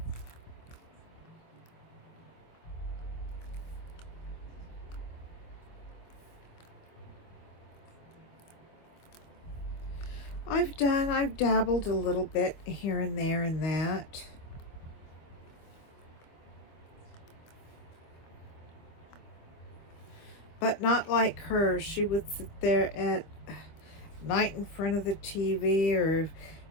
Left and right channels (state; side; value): late; right; 25 ms